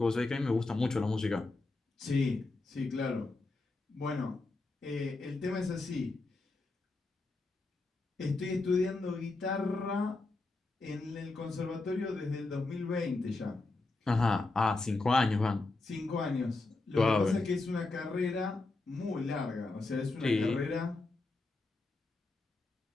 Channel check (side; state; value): right; quieter; 3.3 dB